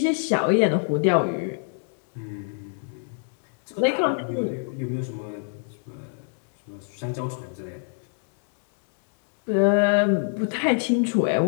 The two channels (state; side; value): silent; right; 60 dB below the other